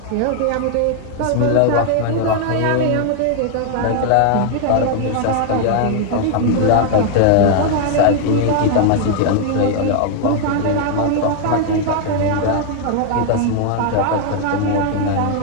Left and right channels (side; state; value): both; different; correlation 0.00